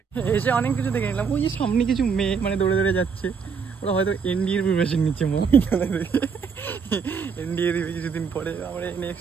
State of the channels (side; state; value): left; quieter; 6.0 dB